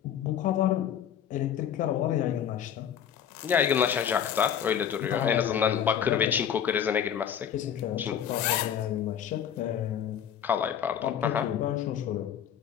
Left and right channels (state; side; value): quieter; right; 9.0 dB